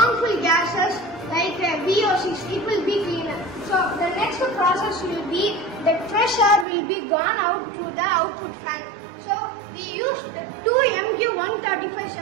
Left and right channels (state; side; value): drops out; left; at 6.7 s